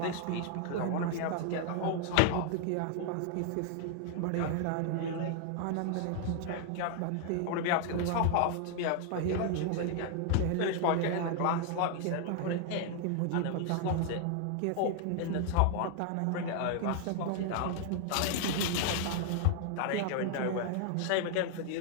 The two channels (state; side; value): different; both; correlation 0.00